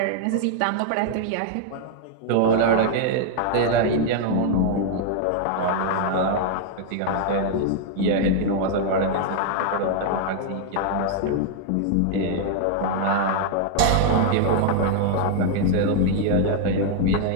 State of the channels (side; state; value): both; different; correlation 0.00